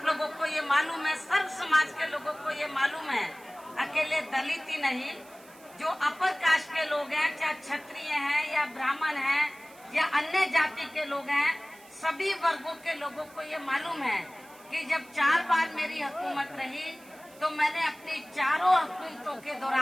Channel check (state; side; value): noise; right; hiss, 24 dB below the sound